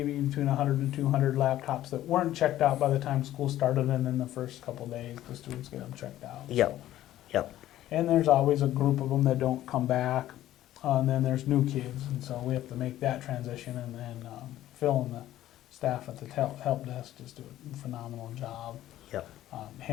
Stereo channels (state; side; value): quieter; right; 13.6 dB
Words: between 100 and 200 laptops that weren't checked out by the time school started, and then the first couple days the students get them checked out. yep, So. yep, And there's always a group of them that don't come back, and then there's new kids, and so we have to make that transition. And then Phil and the staff at the help desk just do a phenomenal job yep,